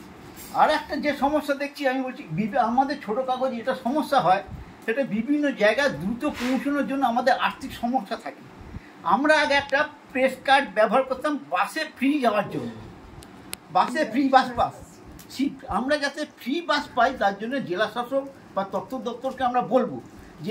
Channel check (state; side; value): identical; both; correlation 1.00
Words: আর একটা যে সমস্যা দেখছি, আমি বলছি আমাদের ছোটো কাগজ এটা সমস্যা হয়, সেটা বিভিন্ন জায়গায় দ্রুত পৌঁছানোর জন্য আমাদের আর্থিক সমস্যা থাকে। আমরা আগে একটা প্রেস কার্ড ব্যবহার করতাম বাসে ফ্রি যাওয়ার জন্য, বাসে ফ্রি বাস সিট। আমরা যাতে ফ্রি বাস পাই তার জন্য জেলা শাসক বা তথ্য দপ্তরকে আমরা বলবো